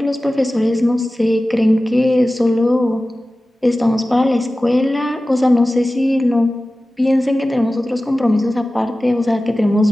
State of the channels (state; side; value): normal; both; correlation 0.96